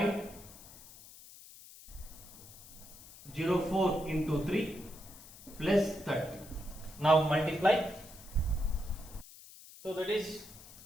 into 3 plus 30. Now multiply. So that is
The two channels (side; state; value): left; noise; hiss, 18 dB below the sound